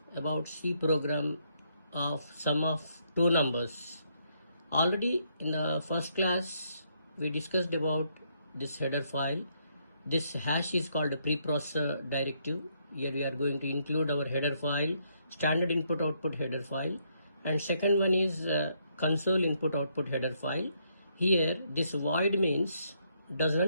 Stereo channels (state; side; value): inverted; both; correlation -0.73